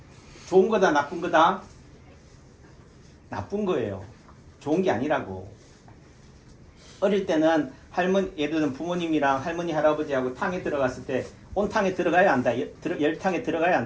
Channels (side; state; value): both; identical; correlation 1.00